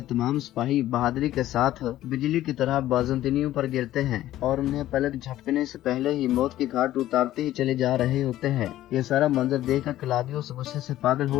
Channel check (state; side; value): quieter; right; 14.0 dB